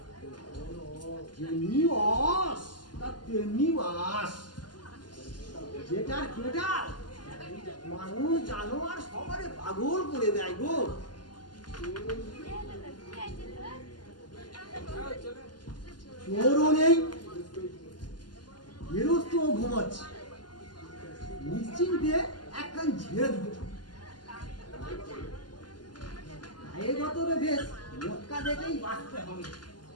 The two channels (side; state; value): right; late; 0.71 ms